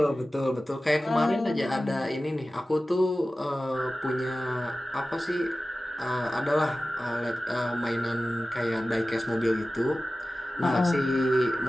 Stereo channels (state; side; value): normal; both; correlation 0.95